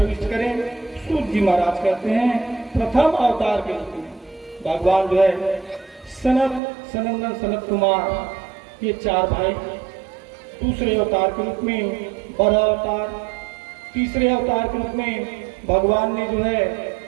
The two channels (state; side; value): drops out; left; at 6.6 s